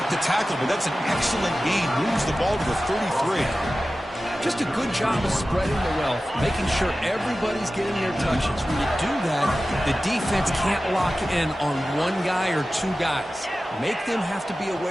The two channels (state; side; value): normal; both; correlation 0.95